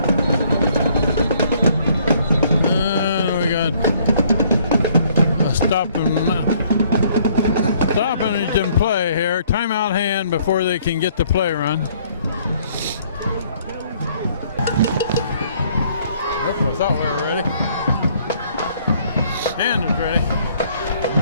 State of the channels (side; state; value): both; inverted; correlation -0.62